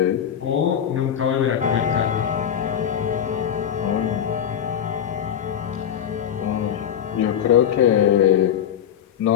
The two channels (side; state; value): right; quieter; 9.2 dB